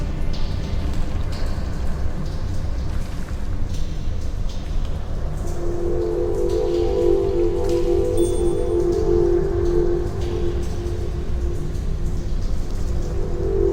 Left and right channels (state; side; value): identical; both; correlation 1.00